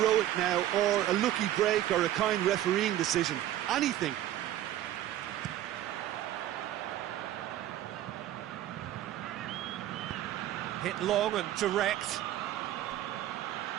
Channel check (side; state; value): left; quieter; 12.9 dB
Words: now, or a lucky break, or a kind refereeing decision. Anything. Hit long and direct.